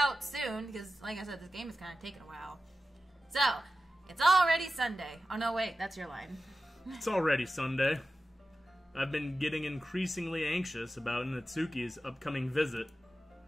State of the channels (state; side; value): normal; both; correlation 0.93